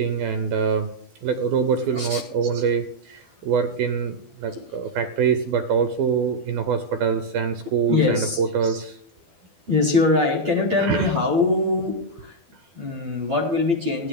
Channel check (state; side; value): late; left; 12 ms